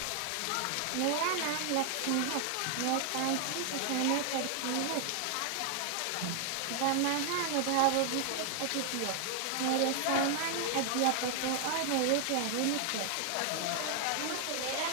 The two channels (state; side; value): different; both; correlation 0.00